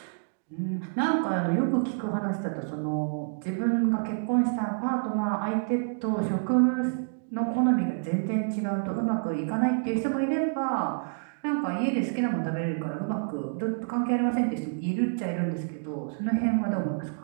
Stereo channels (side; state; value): left; silent; digital silence